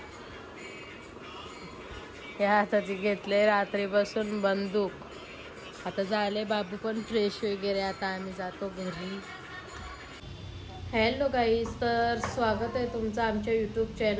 या हाताची घेतले रात्रीपासून बंदूक. आता झाले बाबू पण फ्रेश वगैरे, आता आम्ही जातो घरी. हॅलो गाईज, तर स्वागत आहे तुमचं आमच्या यूट्यूब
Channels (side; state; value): both; identical; correlation 1.00